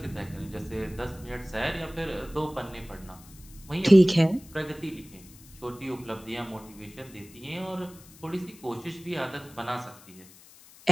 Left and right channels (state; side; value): noise; left; hiss, 22 dB below the sound